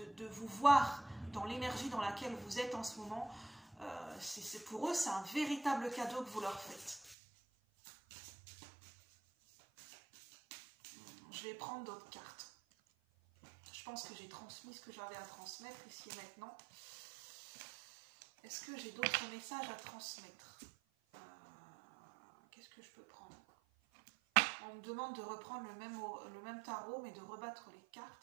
vous voir dans l'énergie dans laquelle vous êtes en ce moment. Pour eux, c'est un véritable cadeau que vous leur faites. Je vais prendre d'autres cartes. Je pense que j'ai transmis ce que j'avais à transmettre ici et maintenant. Est-ce que j'ai d'autres messages à transmettre? Qu'est-ce que je peux prendre? On me demande de reprendre le même tarot, mais de rebattre les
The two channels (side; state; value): left; drops out; at 7.2 s